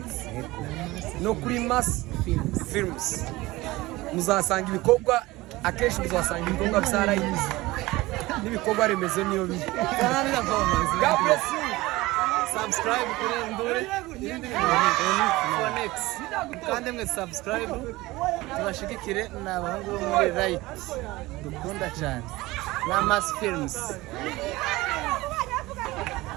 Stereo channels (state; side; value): quieter; left; 19.8 dB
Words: no kuri Mass Films muzasanga ibikorwa akenshi muzasanga ibikorwa byarayize n'ibikorwa remezo niyo biri God bless you subscribe kuri Ndure Phonix kandi mwe subscribe tubashigikire n'abahungu bo muri Right dukunda cyane na Mass Films